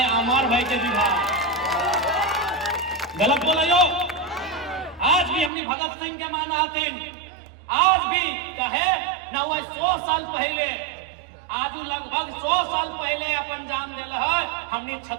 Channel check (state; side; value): drops out; left; at 5.5 s